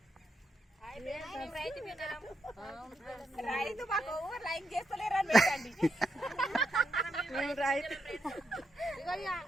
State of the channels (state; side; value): normal; both; correlation 0.80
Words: రైతు మాకు లైక్ చేస్తలేరని పెట్టండి.